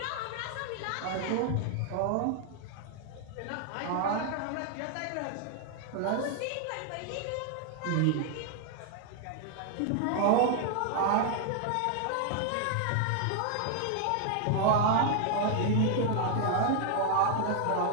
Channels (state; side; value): different; both; correlation 0.00